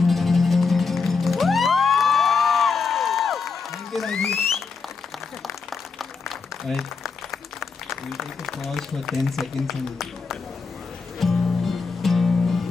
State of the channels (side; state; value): right; quieter; 4.9 dB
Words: Thank you, thank you. Alright, we'll take a pause for 10 seconds and